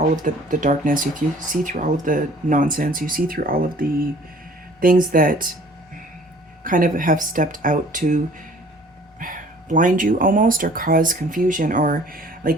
of the darkness. You see through all of the nonsense. You see through all of the things that kind of have stepped out to blind you almost, or cause confusion, or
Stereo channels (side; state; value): both; normal; correlation 0.52